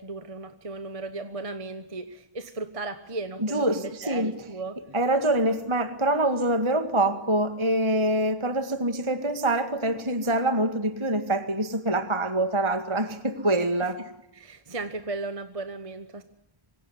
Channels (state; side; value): late; left; 1.4 ms